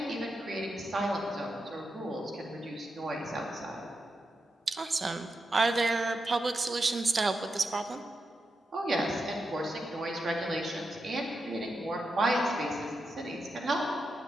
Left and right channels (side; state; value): both; normal; correlation 0.87